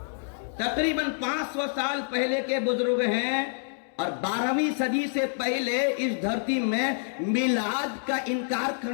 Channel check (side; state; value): right; silent; digital silence